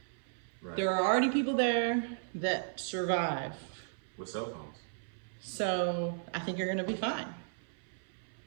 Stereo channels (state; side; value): silent; left; 54 dB below the other